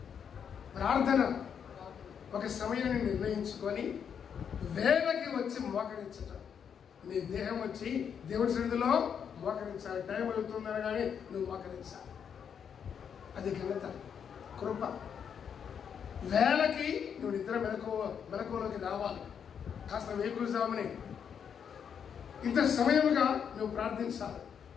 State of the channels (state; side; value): quieter; right; 7.6 dB